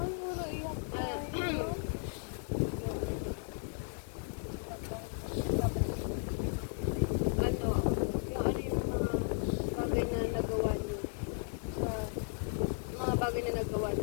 puro iyak tayo. Ano, yung bagay na nagawa niyo sa mga bagay na nagawa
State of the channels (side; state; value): right; silent; 54 dB below the other